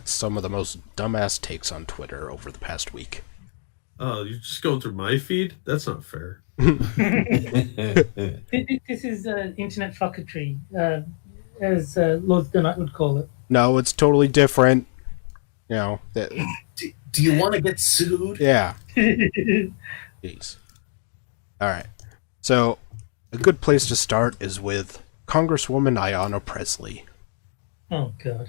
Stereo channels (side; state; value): right; silent; digital silence